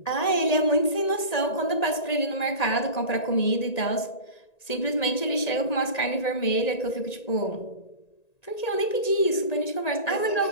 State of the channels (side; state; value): right; late; 1.9 ms